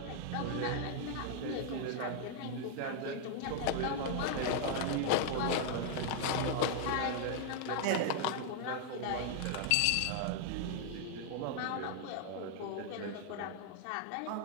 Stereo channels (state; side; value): different; both; correlation 0.00